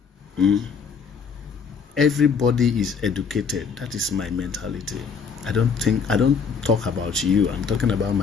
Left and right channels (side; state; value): right; quieter; 5.8 dB